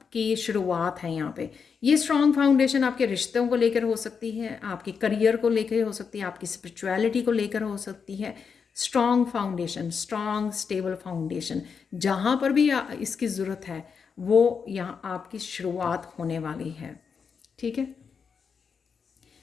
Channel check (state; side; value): quieter; right; 6.0 dB